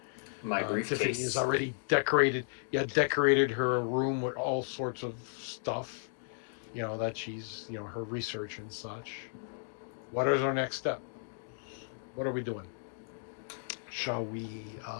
My Tiffany briefcase. has already decorated her room with all sorts of stuff, that she's, her research and such. What is our next step? What are we doing? Shall we,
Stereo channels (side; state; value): right; silent; digital silence